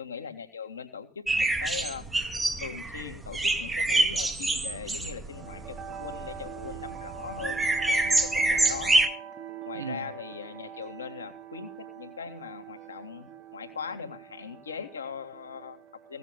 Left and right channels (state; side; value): normal; both; correlation 0.69